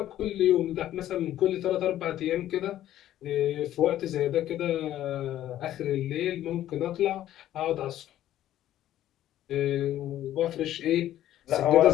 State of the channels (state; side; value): quieter; right; 12.7 dB